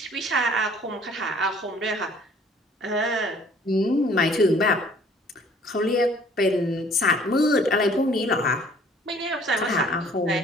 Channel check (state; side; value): normal; both; correlation 0.56